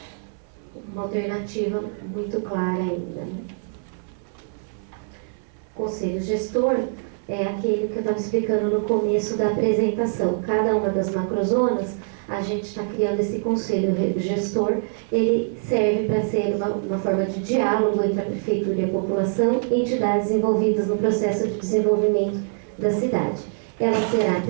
alternativa muito clara ainda, né? Conselho gestor é aquele que eu estava explicando no começo da apresentação. Cada uma das macrozonas, a gente está criando esse conselho gestor. Ele serve para ser uma forma de diálogo entre a prefeitura e a população e entidades envolvidas no processo de desenvolvimento da cidade. Ela será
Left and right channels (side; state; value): left; silent; 62 dB below the other